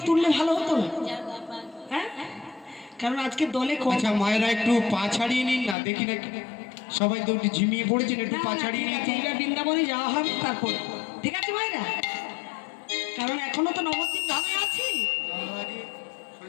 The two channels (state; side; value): drops out; right; at 5.8 s